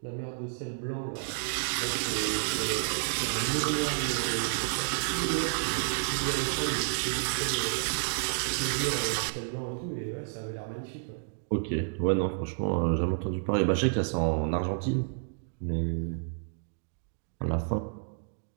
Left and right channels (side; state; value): left; silent; digital silence